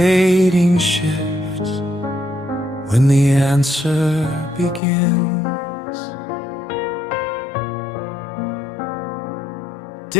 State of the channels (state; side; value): drops out; right; at 4.8 s